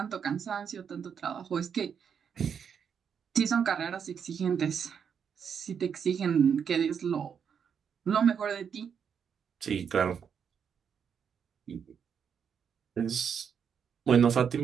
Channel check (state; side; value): quieter; left; 7.3 dB